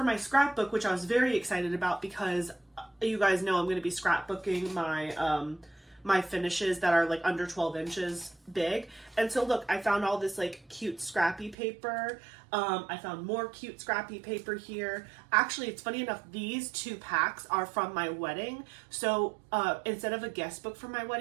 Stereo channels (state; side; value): drops out; left; at 11.6 s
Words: my scrapbook, which I was very excited about because you guys know I'm going to be scrapbooking my finishes that are under 12 inches big. And so look, I found all this cute scrappy paper. I found more cute scrappy paper here. Actually, it's funny enough, these two packs are from my wedding. So instead of a guest book for my